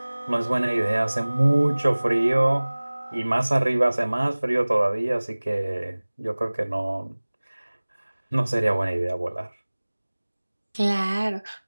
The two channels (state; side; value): inverted; both; correlation -1.00